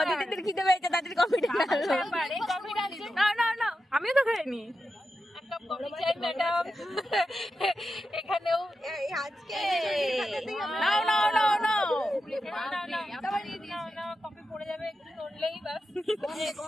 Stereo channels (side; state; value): both; normal; correlation 0.89